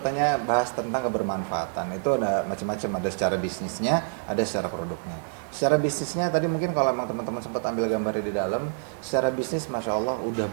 tanya bahas tentang kebermanfaatan, itu ada macam-macam, ada secara bisnisnya, ada secara produknya. Secara bisnisnya tadi mungkin kalau emang teman-teman sempat ambil gambarnya di dalam, secara bisnis Masya Allah udah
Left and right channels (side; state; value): left; silent; digital silence